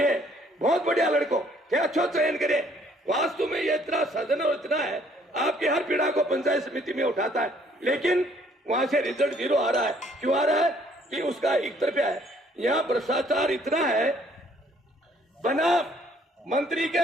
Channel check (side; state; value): both; normal; correlation 0.62